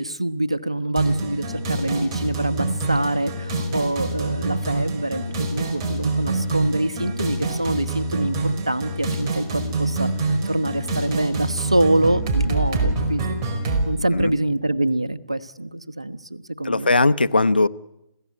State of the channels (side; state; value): both; inverted; correlation -0.83